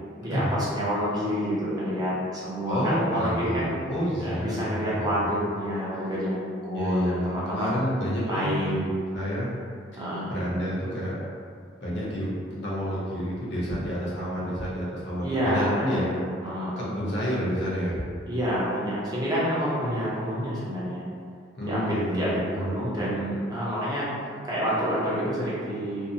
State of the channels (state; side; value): normal; both; correlation 0.52